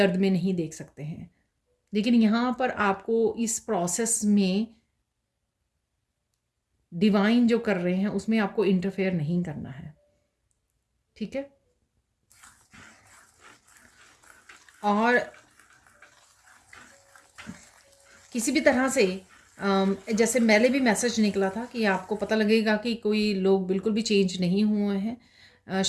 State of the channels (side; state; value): both; identical; correlation 1.00